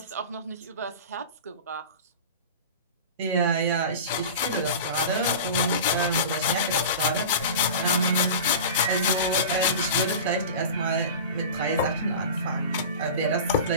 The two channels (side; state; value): both; inverted; correlation -0.32